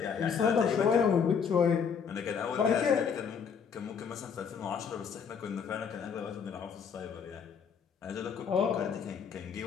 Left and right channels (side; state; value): right; quieter; 6.7 dB